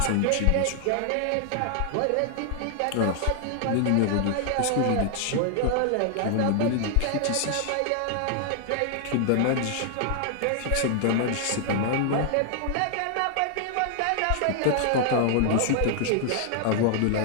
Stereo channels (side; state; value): both; different; correlation 0.00